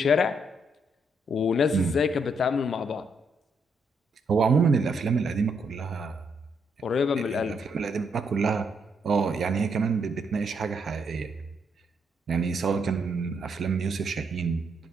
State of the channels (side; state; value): both; normal; correlation 0.75